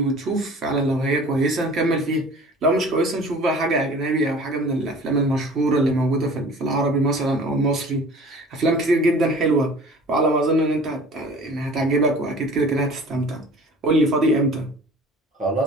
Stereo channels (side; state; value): both; normal; correlation 0.45